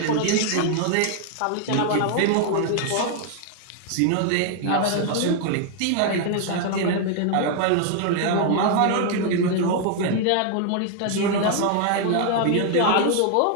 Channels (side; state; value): both; different; correlation 0.00